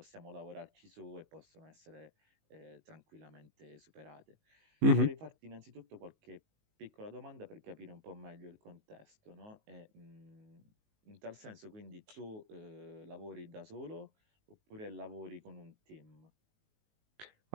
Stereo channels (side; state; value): left; late; 19 ms